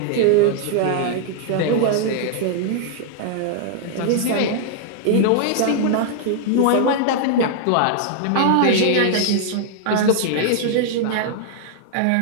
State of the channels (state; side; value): different; both; correlation -0.01